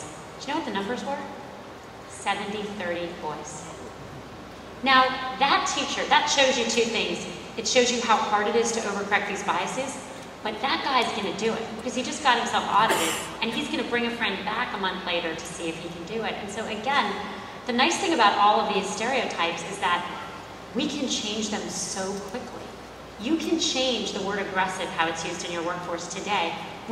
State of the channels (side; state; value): both; identical; correlation 1.00